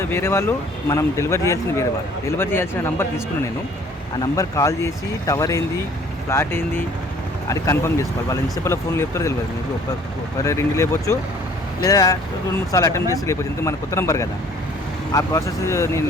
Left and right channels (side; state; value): both; normal; correlation 0.54